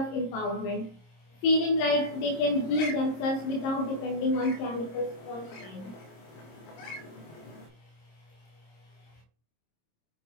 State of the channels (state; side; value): late; right; 26 ms